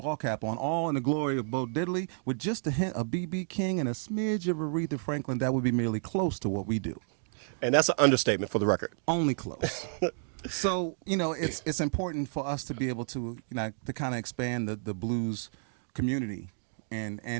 cap on, all in the glory of Bo Diddley, with just a hint of B.B. King and a smidge of Aretha Franklin, that would be merely close to what we do. And that's an understatement for the record. Only close. So, it's important for us to be able to, to kind of expand the blues community and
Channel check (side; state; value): left; silent; digital silence